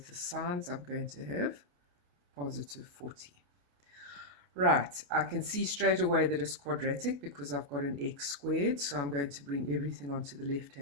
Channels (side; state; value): left; late; 28 ms